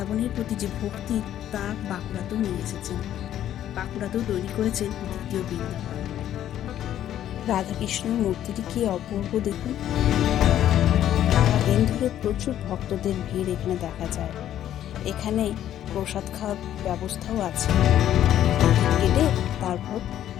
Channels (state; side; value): quieter; right; 11.5 dB